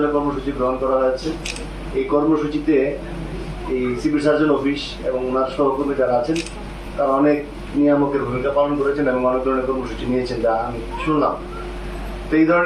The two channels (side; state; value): both; identical; correlation 1.00